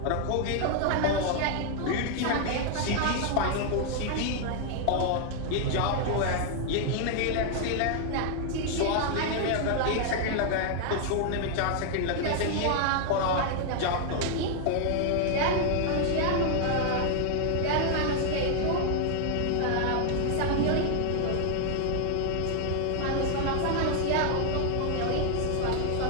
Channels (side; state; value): both; different; correlation 0.00